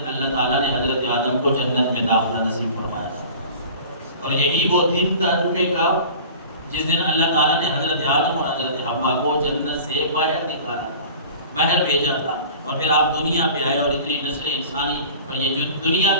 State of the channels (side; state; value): both; inverted; correlation -0.42